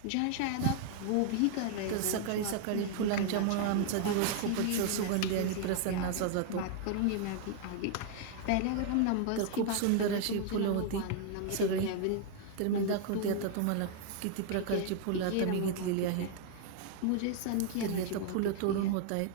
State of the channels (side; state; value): both; different; correlation 0.00